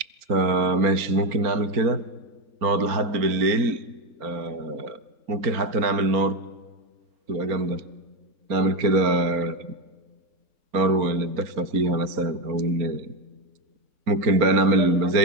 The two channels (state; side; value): late; left; 4.3 ms